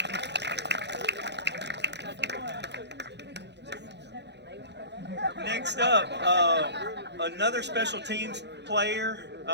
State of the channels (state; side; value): late; left; 0.50 ms